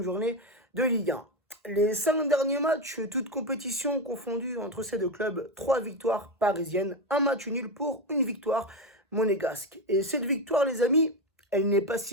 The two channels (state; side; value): normal; both; correlation 0.13